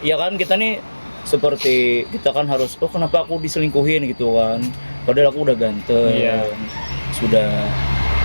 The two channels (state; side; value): inverted; both; correlation -1.00